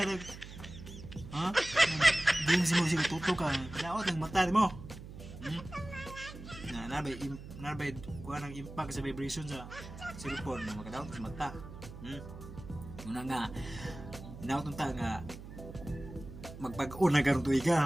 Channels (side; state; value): right; noise; hum, 13 dB below the sound